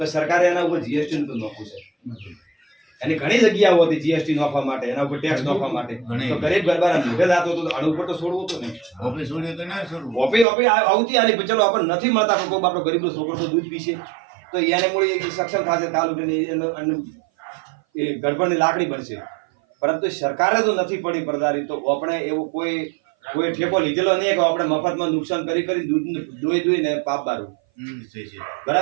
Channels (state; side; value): drops out; left; at 10.5 s